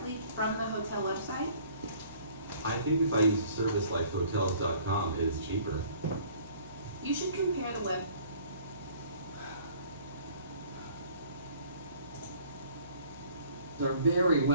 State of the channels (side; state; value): both; inverted; correlation -0.54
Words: from the hotel website? I think if I use a service like hotels.com, it is cheaper. You should compare the web. Are very